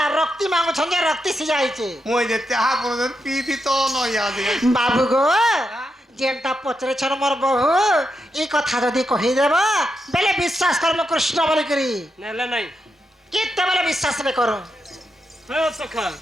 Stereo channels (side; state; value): both; normal; correlation 0.84